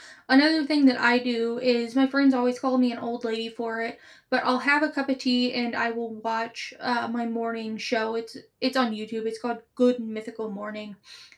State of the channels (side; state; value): both; identical; correlation 1.00